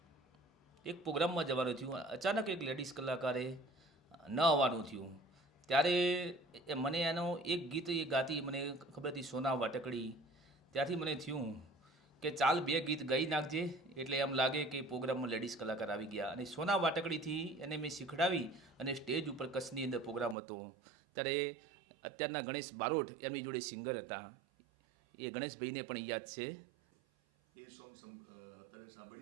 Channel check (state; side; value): drops out; left; at 20.4 s